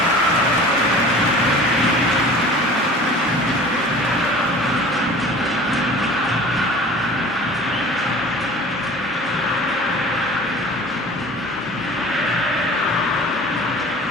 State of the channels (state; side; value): normal; both; correlation 0.43